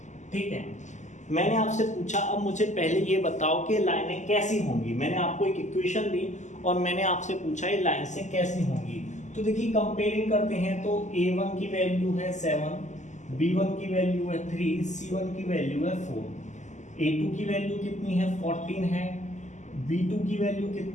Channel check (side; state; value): right; late; 0.34 ms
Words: ठीक है, मैंने आपसे पूछा, अब मुझे पहले ये बताओ कि लाइनें कैसी होंगी। मैंने आपको एक इक्वेशन दी और मैंने आपसे पूछा ये लाइन से कैसी होंगी। तो देखिए कंपेयरिंग करते हैं, तो a1 की वैल्यू है 7, b1 की वैल्यू है 3, c1 की वैल्यू है 4, a2 की वैल्यू कितनी है 14 है, b2 की वैल्यू